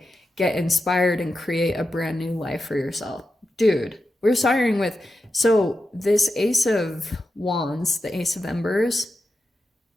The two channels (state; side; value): normal; both; correlation 0.89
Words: get inspired and create a brand new life for yourself. Dude, we're starting with, so this Ace of Wands, the Ace of Embers,